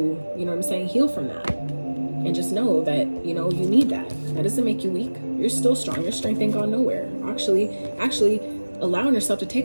know what I'm saying, heal from that. And just know that, you know, you need that. That doesn't make you weak. You're still strong. Your strength ain't gone nowhere. Actually allowing yourself to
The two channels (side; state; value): both; inverted; correlation -1.00